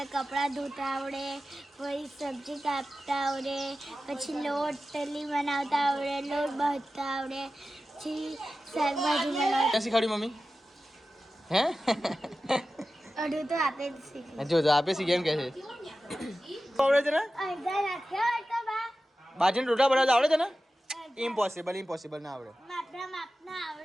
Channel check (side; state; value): both; normal; correlation 0.94